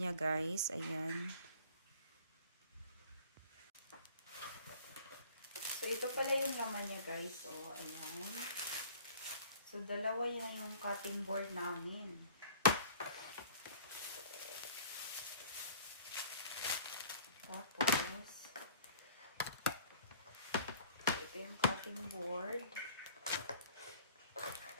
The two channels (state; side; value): inverted; both; correlation -0.48